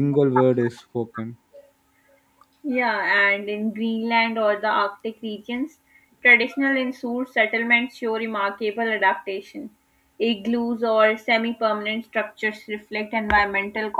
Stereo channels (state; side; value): identical; both; correlation 1.00